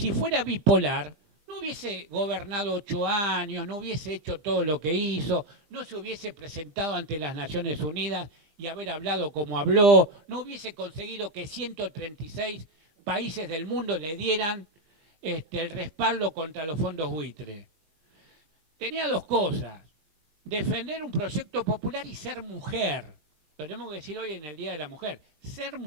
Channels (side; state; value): left; late; 20 ms